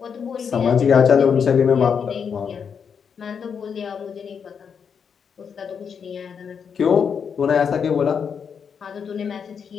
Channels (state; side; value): quieter; right; 6.8 dB